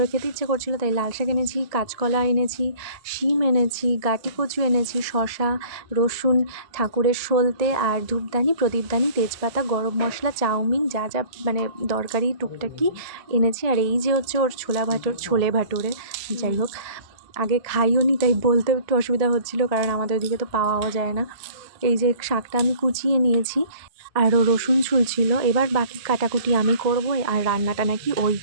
খেতে ইচ্ছে করছিলো, তাই লাল শাক এনেছি, কাঁচকলা এনেছি, শিম এনেছি, গাটি কচু এনেছি, শশা, রসুন, ঠাকুরের সলতে, আর ধূপদানি, প্রদীপদানি, তেজপাতা, গরম মশলা, চাউমিন, যা যা মানে দরকারি টুকটাকি এনেছি। আর এই যে হচ্ছে ওর ছোলে ভাটোরে, যাই হোক আগে খাইও নি, তাই বলতে একটু অসুবিধা হচ্ছিলো, কারণ আমাদের ওদিকে তো পাওয়াও যায় না। এই যে শাকটা আমি কুচিয়ে নিয়েছি, আরও রসুন ছুলছিল। এবার বাকি কাটাকুটি আমি করব, আর রান্নাটা নাকি ওই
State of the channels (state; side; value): late; left; 1.7 ms